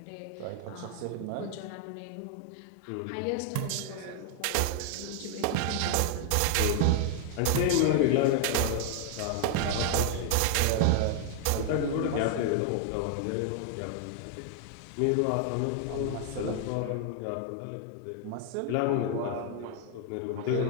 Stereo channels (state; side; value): different; both; correlation 0.00